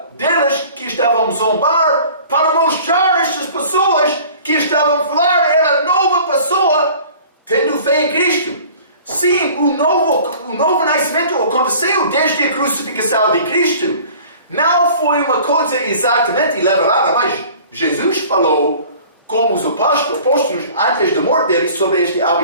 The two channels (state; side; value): inverted; both; correlation -0.47